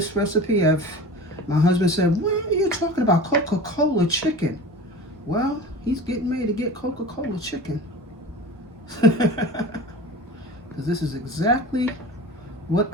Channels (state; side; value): normal; both; correlation 0.35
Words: recipe. My husband said, what are you talking about? Coca-Cola chicken. Well, he's getting ready to get Coca-Cola chicken. Because this is exactly what